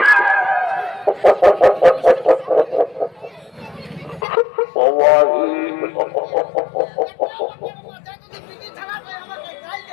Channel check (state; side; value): drops out; right; at 4.2 s